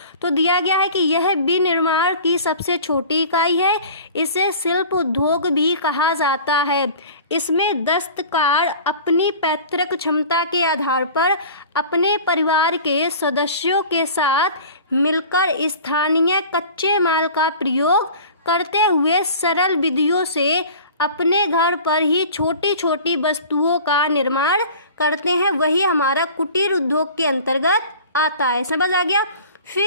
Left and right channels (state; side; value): inverted; both; correlation -0.41